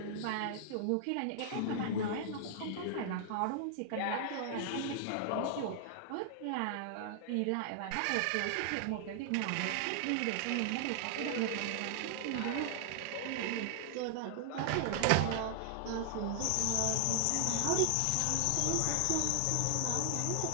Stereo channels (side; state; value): both; different; correlation 0.00